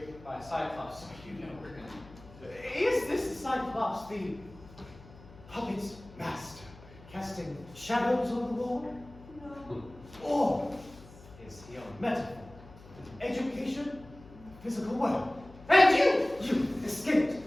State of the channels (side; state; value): left; noise; hum, 20 dB below the sound